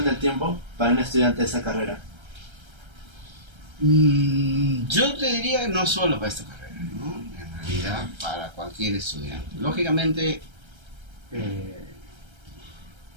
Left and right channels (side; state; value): left; late; 1.3 ms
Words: tiempo para un estudiante de esa carrera. Yo te diría que no solo para esta carrera, ¿no? En realidad para cualquier estudiante. Lógicamente,